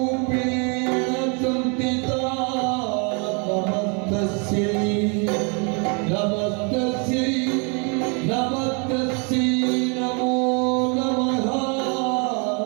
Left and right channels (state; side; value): quieter; left; 35.2 dB